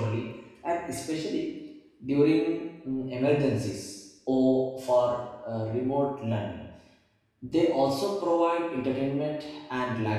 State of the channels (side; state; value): both; identical; correlation 1.00